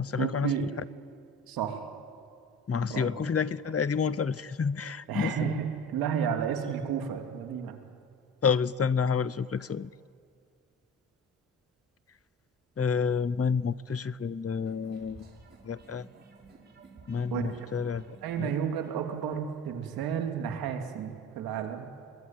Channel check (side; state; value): both; normal; correlation 0.38